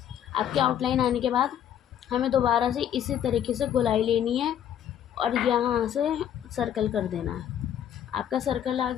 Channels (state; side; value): quieter; right; 10.1 dB